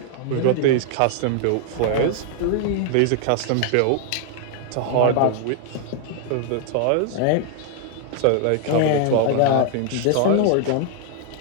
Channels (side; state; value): both; different; correlation 0.00